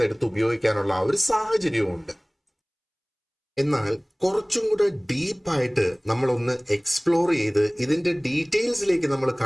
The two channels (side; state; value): both; identical; correlation 1.00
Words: ഉപയോഗിക്കാനുള്ള ആ ഒരു സാഹചര്യവും. എന്നാൽ കുറച്ചും കൂടെ ഡീപ്പായിട്ട് നമ്മളൊന്ന് എക്സ്പ്ലോർ ചെയ്ത് ഇതിന്റെ ഡീറ്റെയിൽസിലേക്ക് നമ്മൾ